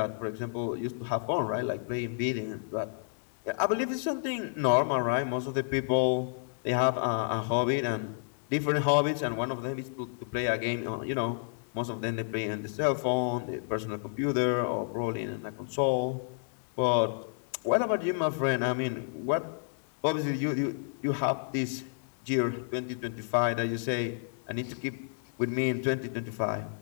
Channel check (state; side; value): silent; right; 57 dB below the other